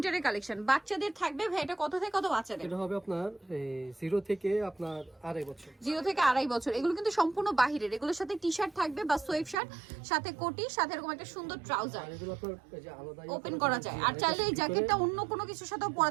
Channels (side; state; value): left; drops out; at 9.6 s